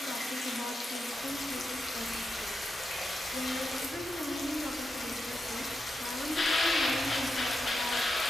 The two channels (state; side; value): normal; both; correlation 0.87